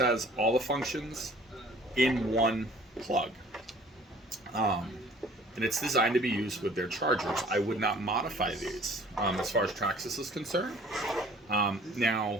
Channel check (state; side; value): normal; both; correlation 0.52